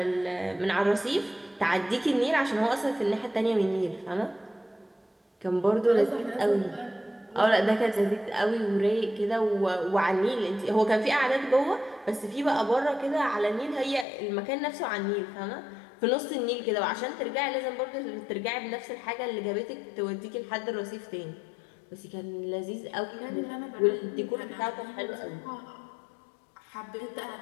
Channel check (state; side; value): drops out; right; at 14.1 s